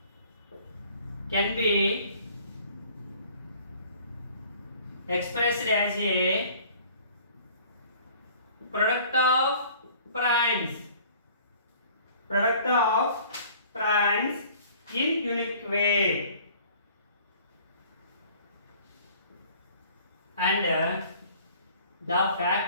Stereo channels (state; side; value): inverted; both; correlation -0.52